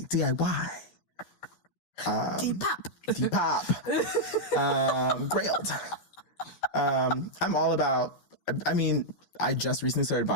Depop. Depop. Grailed. I'm all about, I mean, I just recently started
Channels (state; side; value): late; right; 12 ms